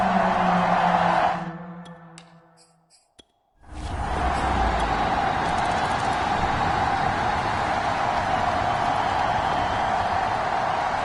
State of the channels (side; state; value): both; identical; correlation 1.00